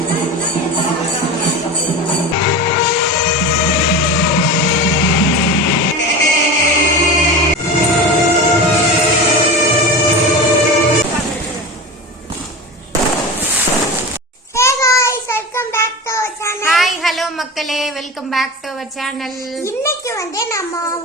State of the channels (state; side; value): normal; both; correlation 0.28